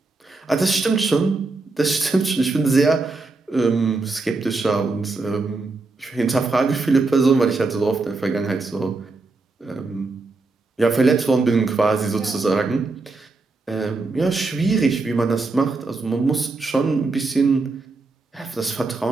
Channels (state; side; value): quieter; left; 3.6 dB